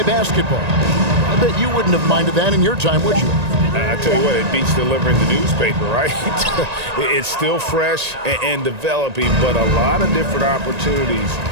basketball. I bet you wouldn't have minded that in your time, would you? I tell you what, it beats delivering the newspaper, right? It's still fresh and developing, but a lot of different opportunities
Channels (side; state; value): left; late; 1.9 ms